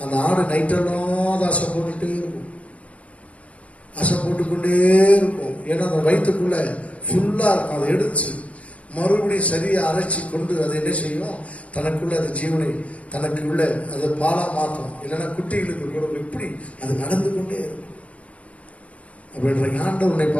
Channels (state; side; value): late; right; 0.065 ms